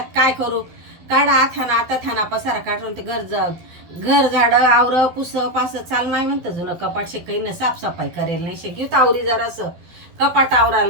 काय करू. काढा थाना आता थाना पसारा काढून ते घर झाड आवर पुस पास चाल माय म्हणतं जुनं कपाट काही ना साफसफाई करेल नाही शिकवत आवरी जरासं कपाट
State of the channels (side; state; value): left; late; 12 ms